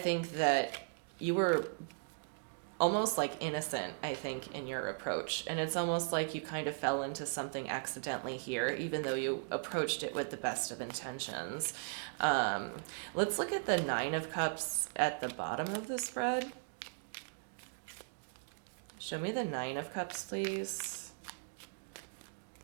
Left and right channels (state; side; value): silent; left; digital silence